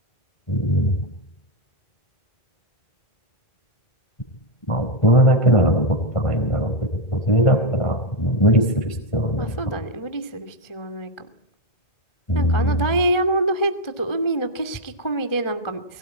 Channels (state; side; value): late; right; 1.4 ms